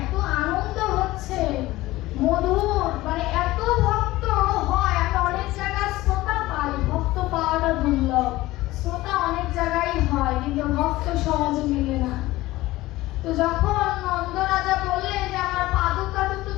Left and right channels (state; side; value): quieter; right; 17.9 dB